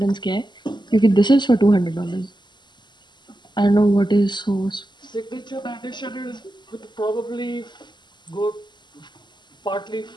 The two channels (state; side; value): late; right; 0.21 ms